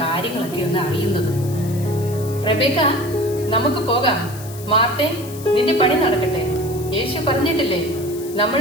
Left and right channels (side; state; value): left; noise; hiss, 16 dB below the sound